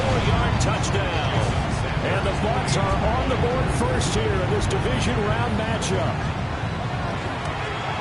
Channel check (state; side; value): identical; both; correlation 1.00